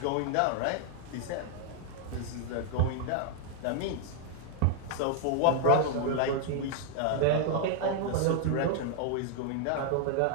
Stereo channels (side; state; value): both; different; correlation 0.00